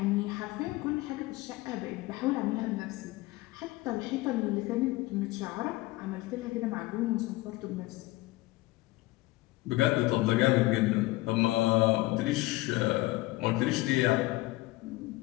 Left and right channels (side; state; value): right; quieter; 19.9 dB